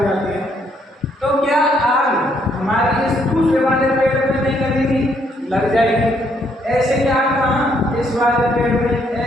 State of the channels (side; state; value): both; normal; correlation 0.71